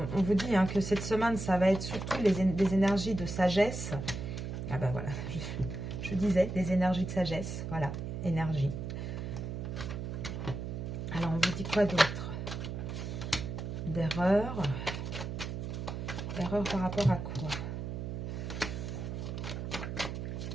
on vous dit que cette semaine, ça va être surtout des énergies de sagesse. Ah ben voilà, je disais, des énergies de sagesse. Voilà, énergie. Alors, on vous dit quoi d'autre? D'erreur. Erreur par rapport à quoi?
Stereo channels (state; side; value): noise; right; hum, 5 dB below the sound